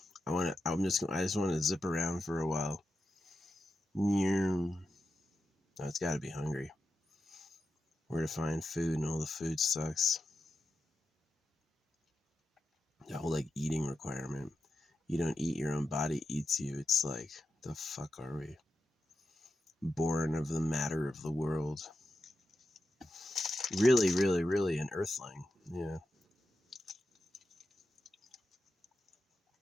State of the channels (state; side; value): normal; both; correlation 0.89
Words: I just want to zip around for a while. No, it's got to be hungry. Where to find food, and all the food sucks. That whole like eating requirement. You don't eat, your own body eats you. It's like, the fuck are we? Born of the matter of the world. Really, really, really an earthling. Yeah.